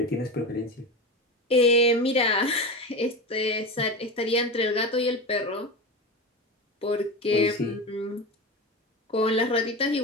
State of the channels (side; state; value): both; normal; correlation 0.23